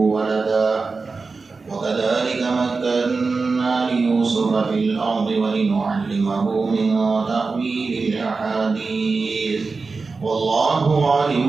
وكذلك مكنا ليوسف في الأرض ولنعلمه من تأويل الأحاديث والله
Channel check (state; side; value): quieter; left; 4.2 dB